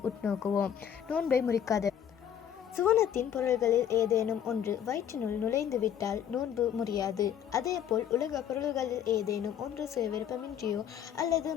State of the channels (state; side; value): quieter; right; 9.2 dB